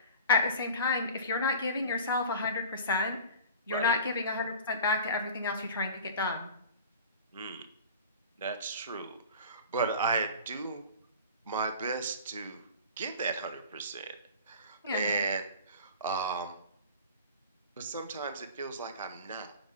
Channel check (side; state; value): both; inverted; correlation -0.38